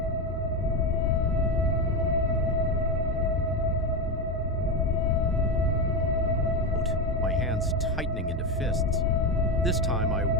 My hands tightening into fists. This time, I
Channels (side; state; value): both; normal; correlation 0.14